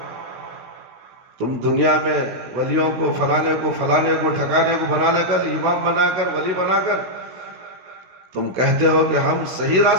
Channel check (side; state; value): left; late; 16 ms